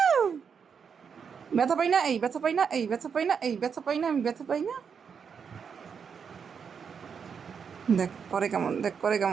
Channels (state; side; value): quieter; left; 6.6 dB